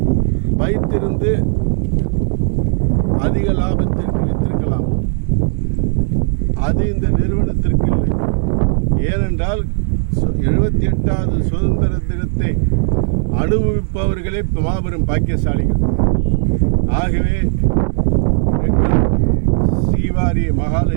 வைத்திருந்து அதிக லாபத்திற்கு வித்திருக்கலாம், அது இந்த நிறுவனத்திற்கு இல்லை. ஏனென்றால் 78வது சுதந்திர தினத்தை அனுபவிப்பவர்களே மாபெரும் பாக்கியசாலிகள். ஆகவே எங்கள் ஸ்ரீவாரி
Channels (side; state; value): left; silent; 64 dB below the other